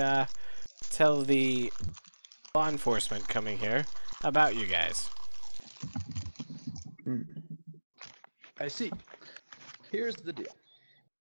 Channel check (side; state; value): both; inverted; correlation -1.00